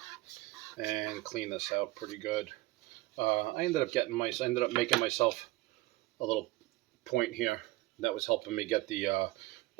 And clean this out pretty good. I ended up making myself a little point here. That was helping me get the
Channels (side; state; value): left; quieter; 19.4 dB